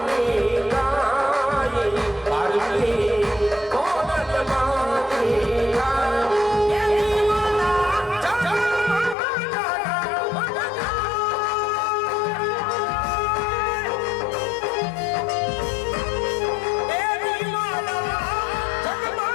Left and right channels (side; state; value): right; drops out; at 9.2 s